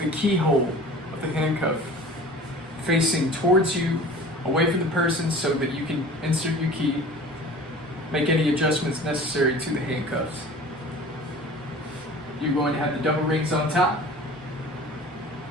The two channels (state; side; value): normal; both; correlation 0.42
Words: the keyhole of the handcuff facing towards you, away from the person, so that you can insert your key, make any adjustments necessary to the handcuffs. You're going to have the double rings on top.